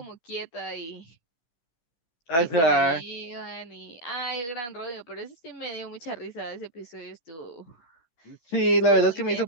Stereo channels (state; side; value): late; right; 12 ms